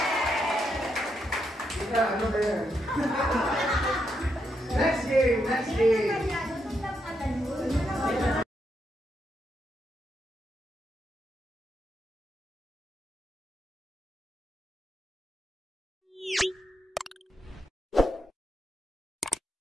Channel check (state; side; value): normal; both; correlation 0.81